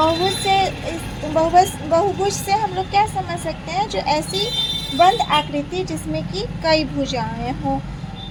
से हम लोग क्या समझ सकते हैं, जो ऐसी बंद आकृति जिसमें कि कई भुजाएं हों।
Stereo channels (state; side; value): identical; both; correlation 1.00